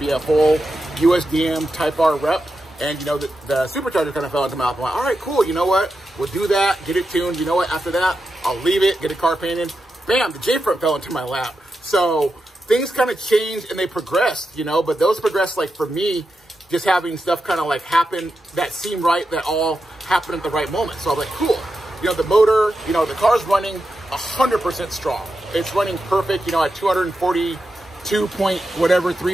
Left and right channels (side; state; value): both; normal; correlation 0.88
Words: a full USDM Type R rep. And, you know, the supercharger kind of fell into my lap. I'm like, all right, cool. You know what? We'll do that, get it tuned. You know what? After that, I'll leave it, get a car painted. Bam, the J-front fell into my lap. So things kind of changed and they progressed, you know, but those progressed, like, for me, just having stuff kind of like happen that seemed right, that all happened at the right moment. So I'm like, cool. You know, the motor, you know, the car's running 100% strong. It's running perfect, you know, at 242 point whatever,